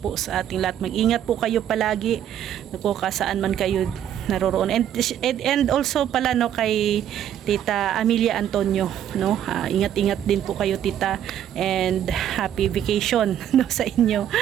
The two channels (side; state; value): left; quieter; 10.4 dB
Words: sa ating lahat. Mag-ingat po kayo palagi, kung saan man kayo naroroon. And also pala, no, kay Tita Amelia Antonio, no, ingat-ingat din po kayo, Tita, and happy vacation, no, sa inyo.